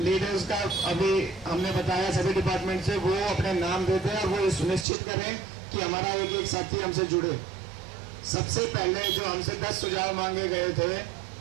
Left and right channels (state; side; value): drops out; left; at 4.9 s